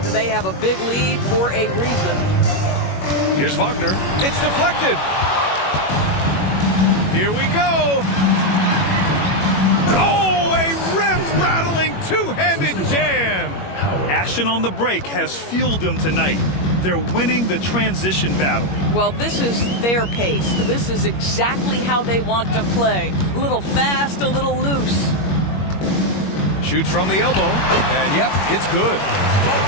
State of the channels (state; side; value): late; right; 21 ms